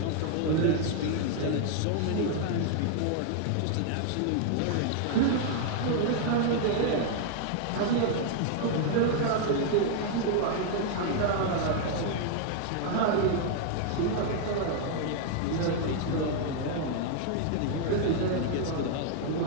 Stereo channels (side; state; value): both; different; correlation 0.00